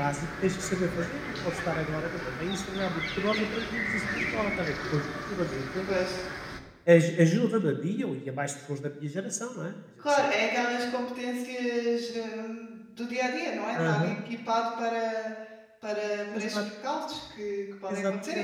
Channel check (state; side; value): identical; both; correlation 1.00